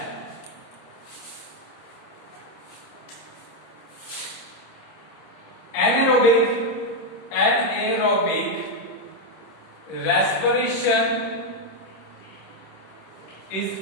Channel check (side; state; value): right; late; 26 ms